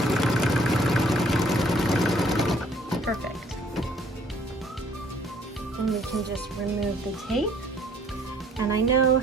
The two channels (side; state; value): both; normal; correlation 0.60